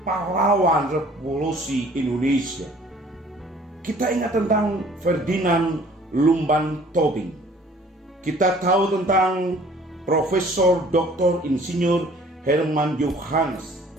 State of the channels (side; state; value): both; normal; correlation 0.53